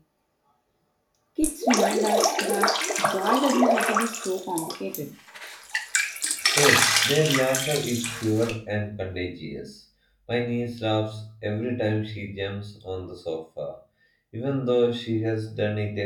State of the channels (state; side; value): identical; both; correlation 1.00